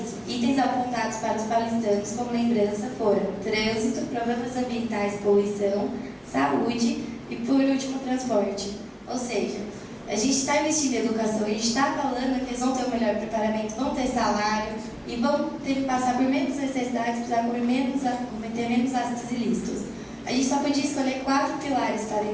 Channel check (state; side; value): identical; both; correlation 1.00